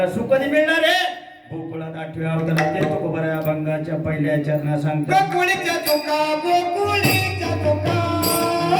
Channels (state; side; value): identical; both; correlation 1.00